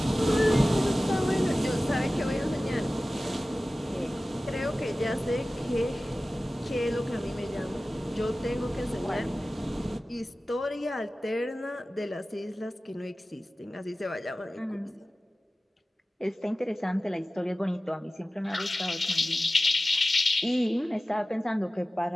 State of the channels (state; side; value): normal; both; correlation 0.96